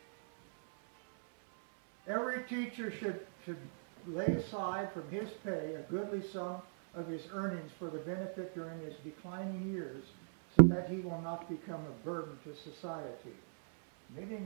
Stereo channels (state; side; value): silent; left; 52 dB below the other